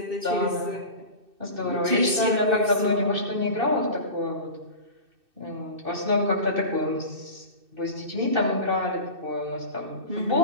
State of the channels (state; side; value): late; left; 2.6 ms